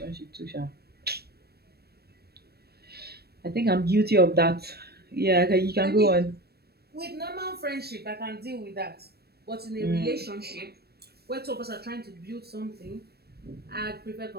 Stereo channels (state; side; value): late; left; 0.47 ms